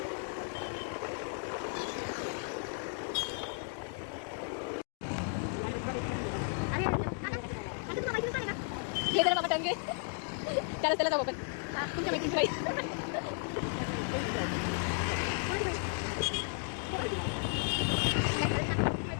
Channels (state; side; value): silent; right; 55 dB below the other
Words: हे जरा बाबा टंगे त्याला जाऊ आपण तुमच्या मैत्रिणी बाई.